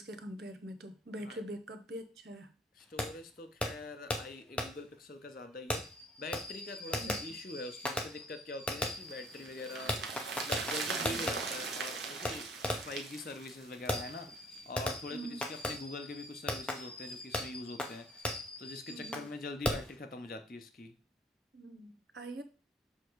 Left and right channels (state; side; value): normal; both; correlation 0.55